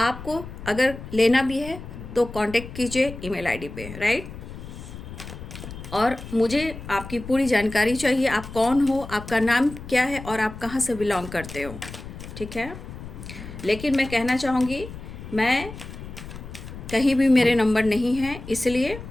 अगर लेना भी है तो कांटेक्ट कीजिए ईमेल आईडी पे, राइट। और मुझे आपकी पूरी जानकारी चाहिए, आप कौन हो, आपका नाम क्या है और आप कहाँ से बिलोंग करते हो, ठीक है। लेकिन मैं कहना चाहूँगी, मैं कहीं भी मेरे नंबर नहीं है, इसलिए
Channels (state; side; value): noise; left; rumble, 12 dB below the sound